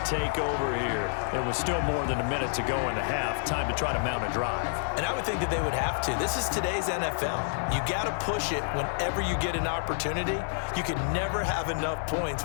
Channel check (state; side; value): silent; right; digital silence